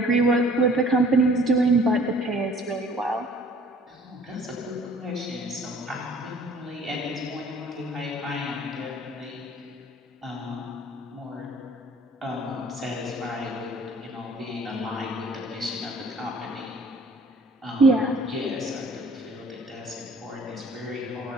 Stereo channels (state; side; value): normal; both; correlation 0.53